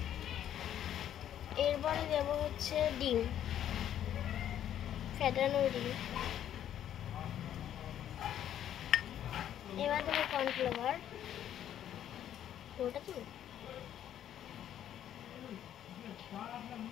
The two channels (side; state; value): right; quieter; 10.7 dB